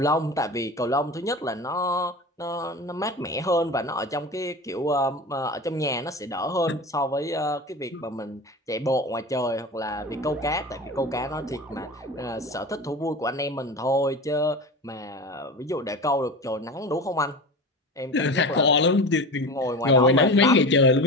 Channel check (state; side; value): normal; both; correlation 0.30